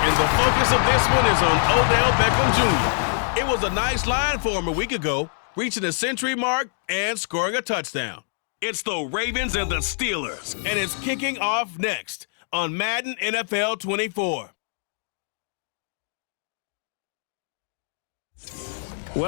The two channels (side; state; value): right; silent; digital silence